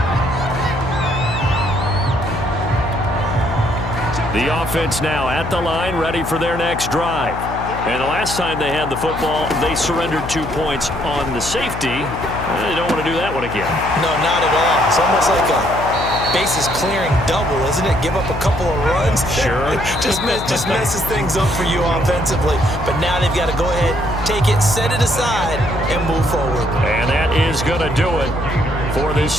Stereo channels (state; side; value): noise; left; hum, 8 dB below the sound